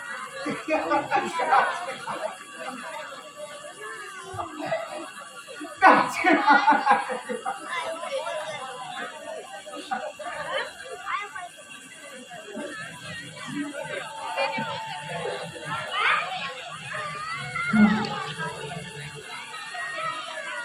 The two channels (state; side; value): identical; both; correlation 1.00